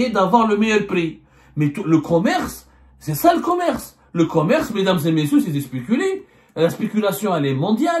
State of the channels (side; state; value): both; identical; correlation 1.00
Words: d'avoir le meilleur prix. Mais le commerce, c'est ça le commerce. Le commerce, mesdames et messieurs, c'est de spéculer. La spéculation, elle est